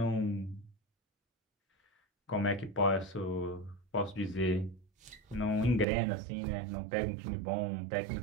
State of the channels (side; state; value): left; drops out; at 5.9 s